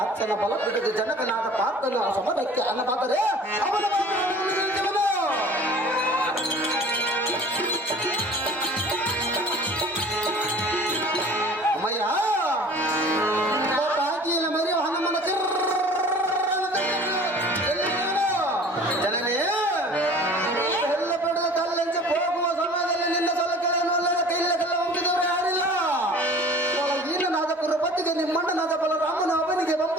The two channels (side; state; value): both; normal; correlation 0.46